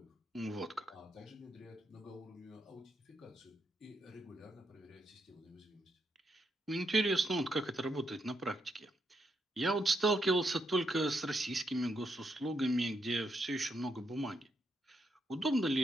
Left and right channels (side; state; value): both; normal; correlation 0.80